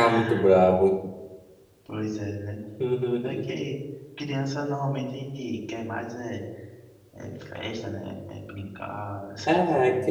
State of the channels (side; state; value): both; identical; correlation 1.00